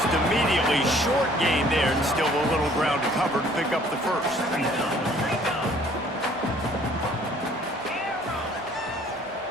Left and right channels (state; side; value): normal; both; correlation 0.57